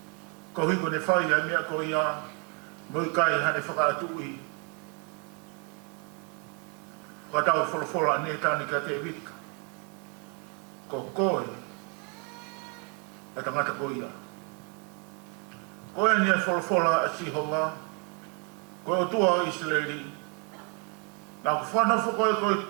ko hiko ne whai ai mea ko ia, mui kai hane whakaatui. Whatau wholofola ne tani ka te vita. Ko koe, e tangata ko ia. Koe ni e wholofola a sihowa, koe o tua o Israeli, nā ku whanawha koe koe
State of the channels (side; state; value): left; quieter; 34.6 dB